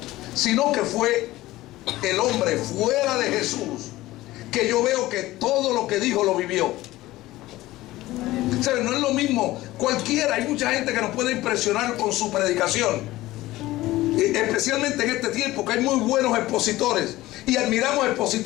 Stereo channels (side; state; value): right; quieter; 17.3 dB